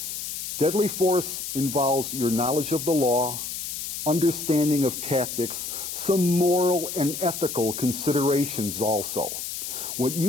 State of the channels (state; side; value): noise; left; hiss, 6 dB below the sound